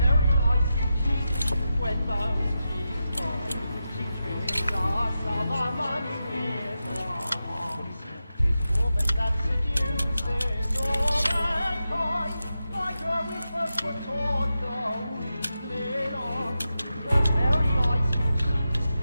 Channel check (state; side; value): inverted; both; correlation -0.90